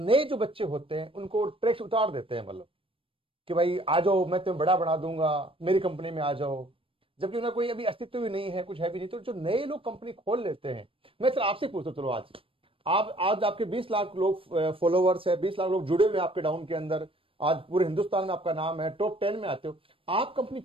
जो बच्चे होते हैं उनको ट्रैक उतार देते हैं, मतलब कि भाई आ जाओ, मैं तुम्हें बड़ा बना दूंगा, मेरी कंपनी में आ जाओ, जबकि उन्हें कोई अभी अस्तित्व भी नहीं है, कुछ है भी नहीं। तो जो नए लोग कंपनी खोल लेते हैं, मैं सर आपसे पूछता हूं, चलो आज आपके 20 लाख लोग फॉलोवर्स है, 20 लाख लोग जुड़े हुए आपके डाउन के अंदर, आज पूरे हिंदुस्तान में आपका नाम है, टॉप 10 में आते हो, आप कंपनी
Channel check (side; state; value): left; late; 0.26 ms